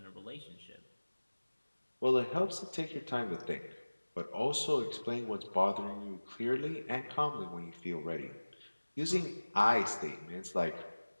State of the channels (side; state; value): both; inverted; correlation -1.00